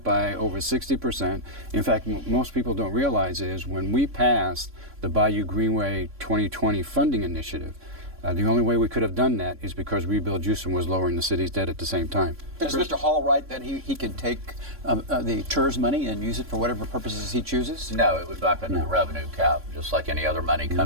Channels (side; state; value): left; late; 3.6 ms